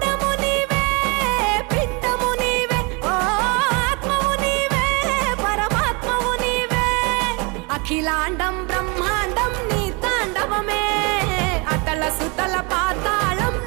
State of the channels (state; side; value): quieter; left; 30.0 dB